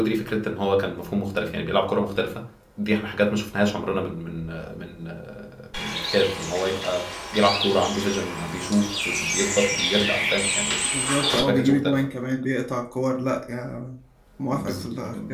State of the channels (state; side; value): identical; both; correlation 1.00